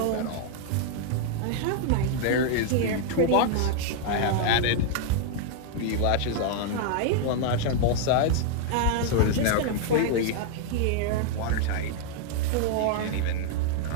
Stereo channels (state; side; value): different; both; correlation 0.00